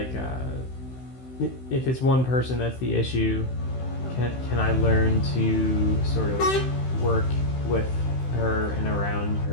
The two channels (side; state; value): right; late; 16 ms